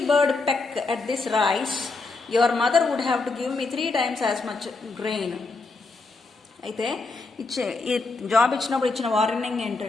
bird peck at this rice, your mother would have to give me 3 times as much grain. అయితే ఈ జాబ్ ఇచ్చినప్పుడు ఇచ్చిన వార్నింగ్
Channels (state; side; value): quieter; right; 3.7 dB